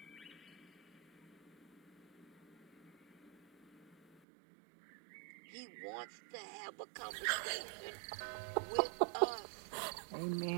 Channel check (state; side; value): drops out; left; at 4.2 s